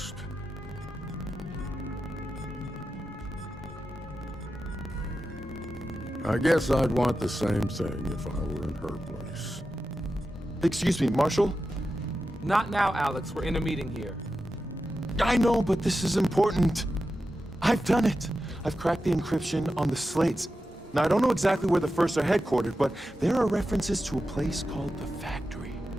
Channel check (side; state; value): both; normal; correlation 0.91